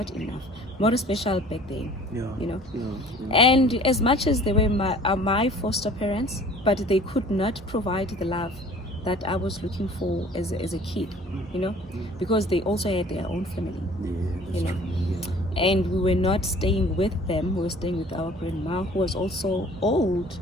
enough. More special back then, you know. And as much as they were my foster parents, but they could not provide the love that I was looking for as a kid, you know, because they also had their own family, you know. And we were not staying with them, we were staying with our grandma, who was also old,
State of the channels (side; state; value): both; normal; correlation 0.50